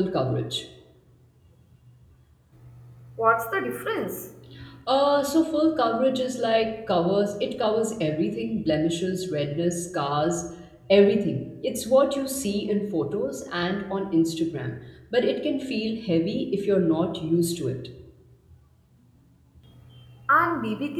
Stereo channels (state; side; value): identical; both; correlation 1.00